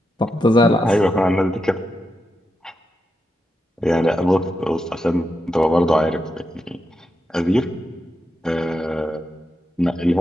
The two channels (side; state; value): both; normal; correlation 0.86